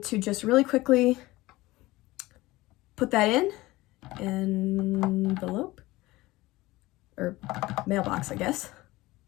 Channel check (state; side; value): quieter; right; 19.3 dB